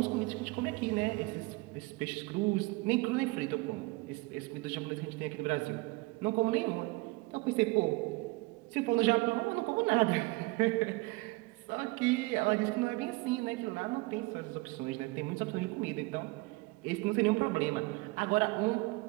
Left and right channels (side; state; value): left; quieter; 24.1 dB